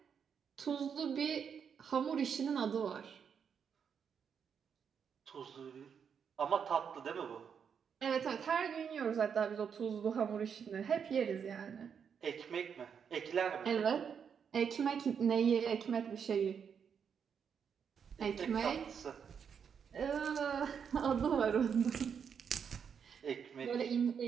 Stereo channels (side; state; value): left; quieter; 7.1 dB